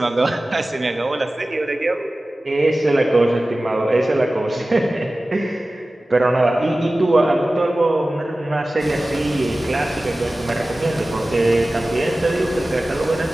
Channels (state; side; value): normal; both; correlation 0.96